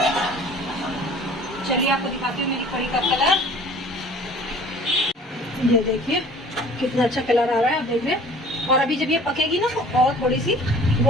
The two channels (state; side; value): normal; both; correlation 0.49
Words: चलिए आपको दिखाती हूँ मेरी कड़ी का कलर। ये देखिए कितना अच्छा कलर आ रहा है, आप देख रहे हैं। और अभी जब ये पकेगी ना तो और थोड़ी सी